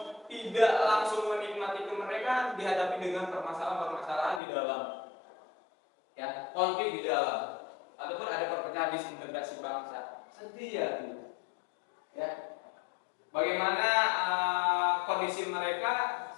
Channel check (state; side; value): drops out; right; at 4.4 s